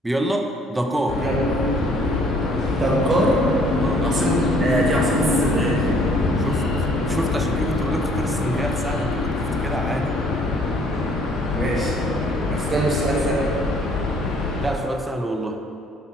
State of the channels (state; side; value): normal; both; correlation 0.60